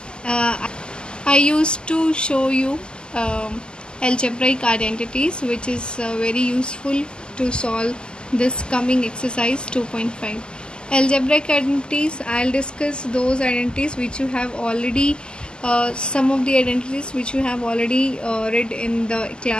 I used to show you algebraic identities, which is very useful to solve this coming exercise 2.5. Algebraic identities, I'll discuss those identities which you have already some of the identities which you have already read in the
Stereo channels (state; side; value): late; right; 0.047 ms